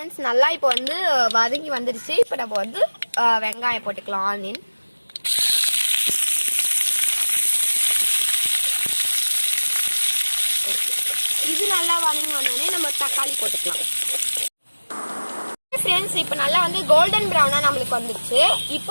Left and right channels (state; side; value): inverted; both; correlation -1.00